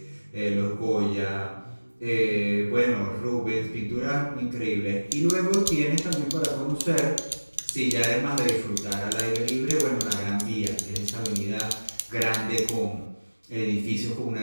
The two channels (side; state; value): both; inverted; correlation -1.00